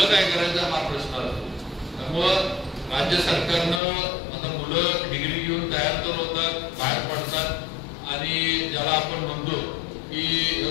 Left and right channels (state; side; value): drops out; right; at 3.8 s